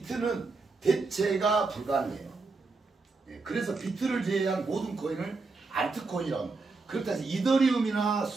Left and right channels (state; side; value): quieter; left; 3.9 dB